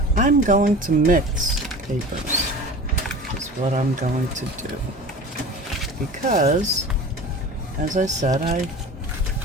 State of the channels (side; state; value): both; normal; correlation 0.36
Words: I'm going to mix papers is what I'm going to do. Because, as I said, I